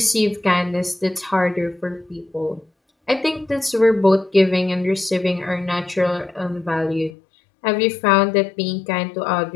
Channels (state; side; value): drops out; right; at 7.2 s